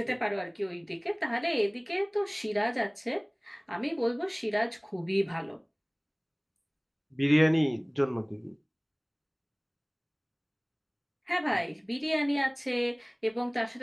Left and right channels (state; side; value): identical; both; correlation 1.00